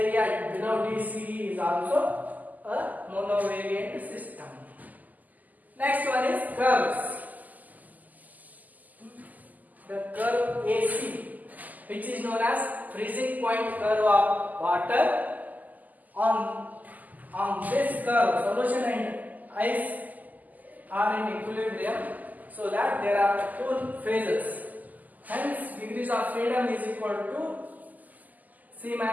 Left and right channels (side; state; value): left; late; 0.081 ms